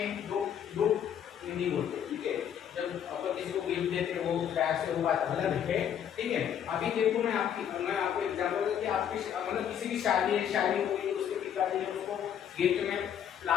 दो नहीं बोलते, ठीक है। जब अपन किसी को गिफ्ट देते हैं वो बैग से वो बात अलग है, ठीक है। अभी देखो मैं आपको एग्जांपल दूं कि आपकी मतलब किसी की शादी हो गई, उसके पिताजी ने उसको गिफ्ट में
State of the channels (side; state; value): right; quieter; 9.2 dB